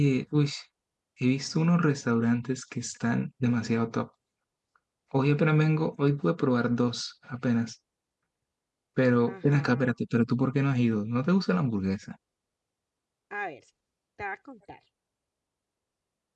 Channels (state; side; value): identical; both; correlation 1.00